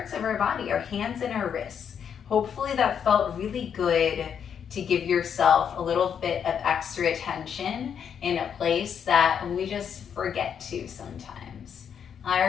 of our body, our hands and our wrists. Hopefully that felt really good to give yourself a little bit of extra attention in a place that we just forget to sometimes.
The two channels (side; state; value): right; quieter; 7.8 dB